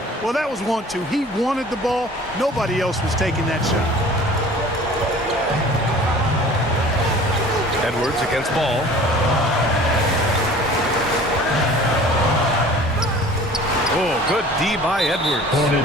Well, that was 1-2. He wanted the ball. Nobody else was taking that shot. Edwards against Ball. Oh, good D by Edwards.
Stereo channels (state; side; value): normal; both; correlation 0.46